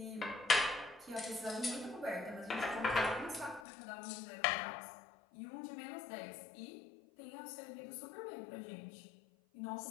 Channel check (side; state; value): right; drops out; at 3.7 s